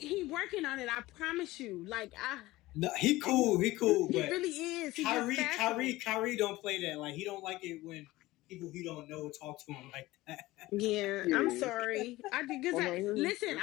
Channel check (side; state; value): right; quieter; 18.4 dB